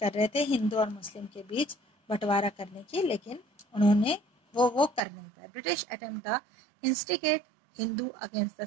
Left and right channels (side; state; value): left; drops out; at 5.0 s